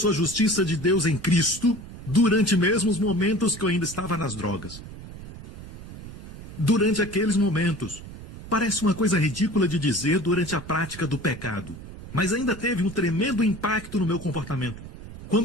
a justiça de Deus em Cristo, durante mesmo os momentos que eu ainda estava nas drogas. Durante aqueles momentos, parece uma coisa ridícula de dizer durante a prática do pecado, mas ainda teve um tremendo impacto no meu comportamento.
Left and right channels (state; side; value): noise; right; rumble, 14 dB below the sound